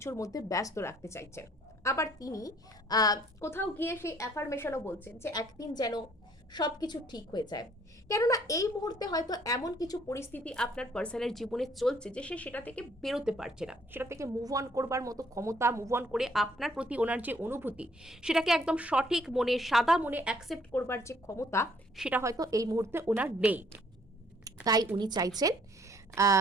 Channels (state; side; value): normal; both; correlation 0.63